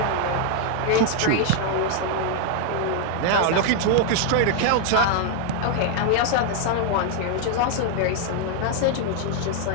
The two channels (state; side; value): different; both; correlation 0.00